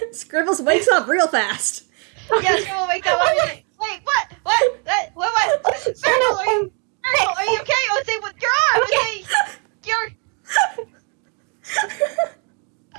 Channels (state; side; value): quieter; left; 37.6 dB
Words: Scribbles wakes up real fast. Yeah, Scribbles wakes up. Wait, what? Scribbles,